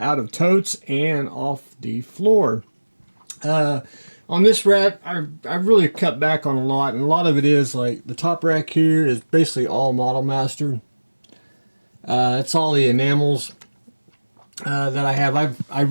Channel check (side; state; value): both; inverted; correlation -1.00